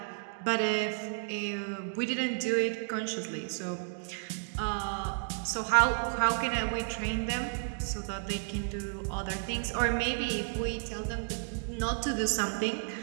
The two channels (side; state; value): left; silent; digital silence